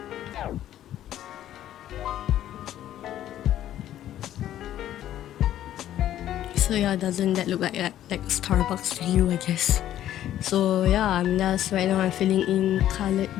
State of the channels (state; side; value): quieter; right; 12.1 dB